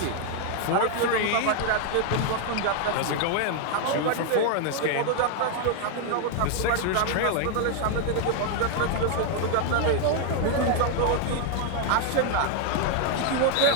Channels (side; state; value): both; different; correlation 0.00